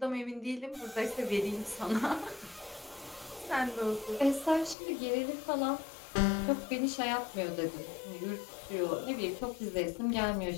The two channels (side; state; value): right; drops out; at 4.8 s